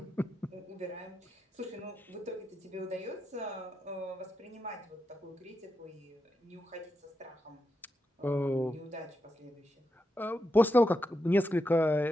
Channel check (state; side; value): normal; both; correlation 0.86